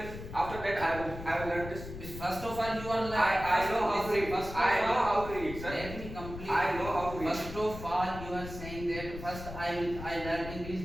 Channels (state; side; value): noise; left; rumble, 10 dB below the sound